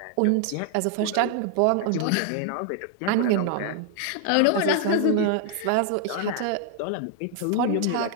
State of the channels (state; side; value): different; both; correlation 0.00